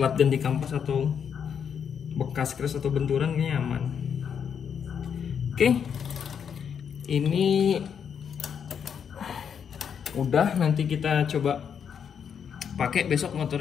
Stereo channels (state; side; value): quieter; right; 7.5 dB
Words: ganti kampas atau bekas crash atau benturan, kayaknya aman. Oke, ini udah, nanti kita coba pakai besok